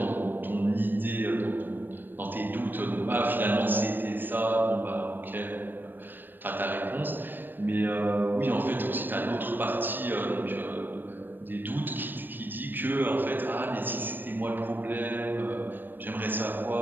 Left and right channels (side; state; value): left; late; 0.093 ms